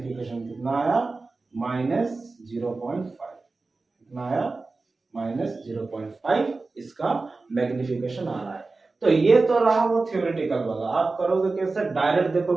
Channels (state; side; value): quieter; left; 3.7 dB